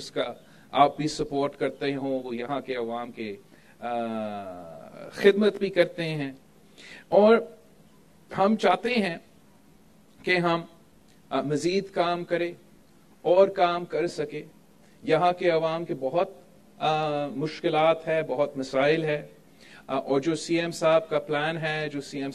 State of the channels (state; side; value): identical; both; correlation 1.00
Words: आप भी सपोर्ट करते हो, वो यहाँ के अवाम के खिदमत भी करते हैं। और हम चाहते हैं कि हम मजीद काम करें और काम कर सके। यहाँ के अवाम के बहुत मुश्किलात है, बहुत मसाइल है, और जो सीएम साहब का प्लान है, जो सीएम